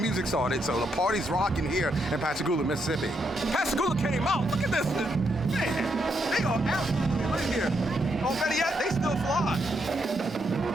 started, so the party's rocking here in Pascagoula, Mississippi. Pascagoula came out. Look at this. Man, they are absolutely lit here. Oh, better yet, they still fly.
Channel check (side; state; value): both; normal; correlation 0.78